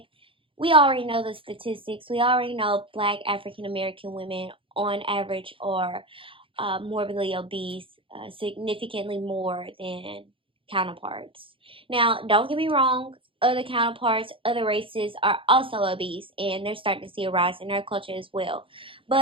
We already know the statistics. We already know black African American women, on average, are morbidly obese, significantly more than counterparts. Now, don't get me wrong. Other counterparts, other races are also obese, and they're starting to see a rise in their culture as well.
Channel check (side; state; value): left; late; 0.25 ms